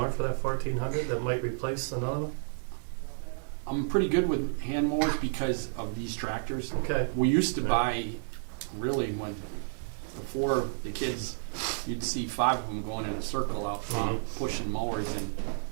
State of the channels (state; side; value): silent; left; digital silence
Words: for that 1,400 that might replace another one? I'm pretty good with hand mowers because of these tractors. Okay. We used to buy, really, before the kids, you'd see 5 of them going in a circle out front, pushing mowers, and